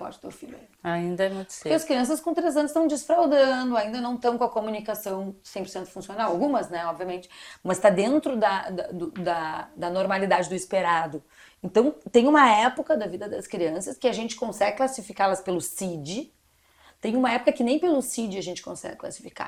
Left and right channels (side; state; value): both; identical; correlation 1.00